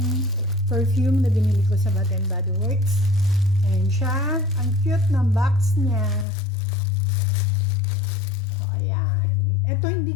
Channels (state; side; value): drops out; right; at 6.2 s